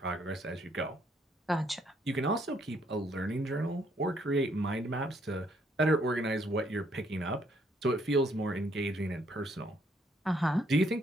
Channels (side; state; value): both; normal; correlation 0.69